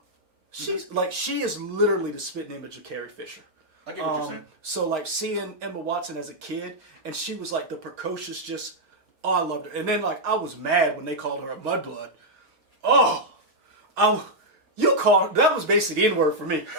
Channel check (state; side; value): late; left; 4.9 ms